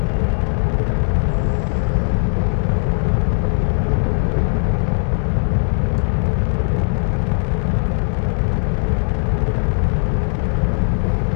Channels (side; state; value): right; silent; 67 dB below the other